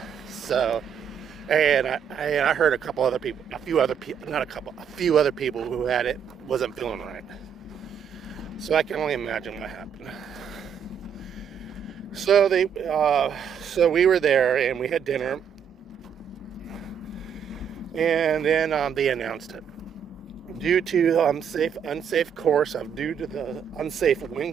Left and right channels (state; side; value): quieter; left; 7.7 dB